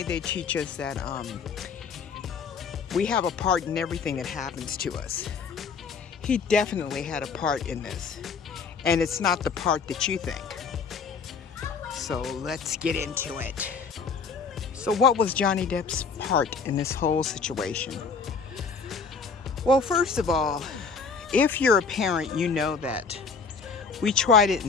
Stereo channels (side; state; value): right; quieter; 5.3 dB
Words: they teach us that we have a part in everything that happens to us. He definitely had a part in this, and it's not the part that you think. So let's get into it. So what was Johnny Depp's part in this whole situation? Well, first of all, if you're a parent, you know that we try to